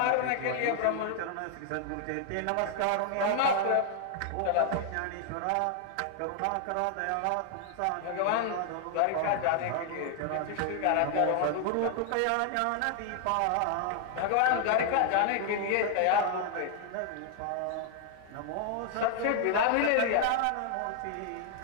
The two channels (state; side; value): different; both; correlation 0.00